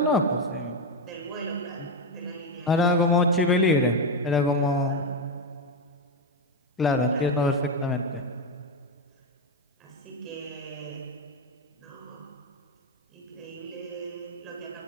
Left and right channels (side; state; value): both; normal; correlation 0.08